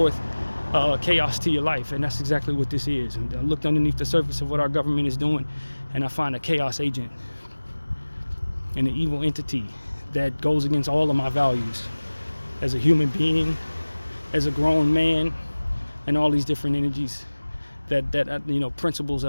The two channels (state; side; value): inverted; both; correlation -1.00